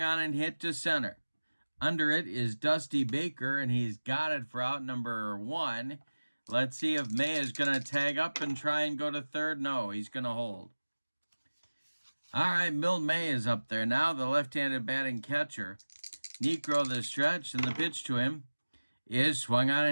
on and hit to center. Under it is Dusty Baker, and he's got it for out number 1. Let's see if May is going to tag up and try and go to third. No, he's going to hold. All right, Milt May is up there now, the left-handed batting catcher. Negro, the stretch, and the pitch to him is swung on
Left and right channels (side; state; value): both; inverted; correlation -1.00